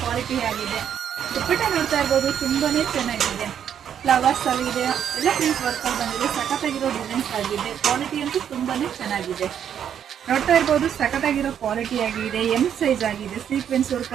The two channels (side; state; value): left; quieter; 9.0 dB